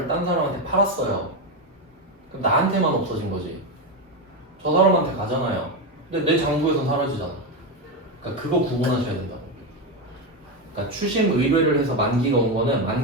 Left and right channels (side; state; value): both; normal; correlation 0.11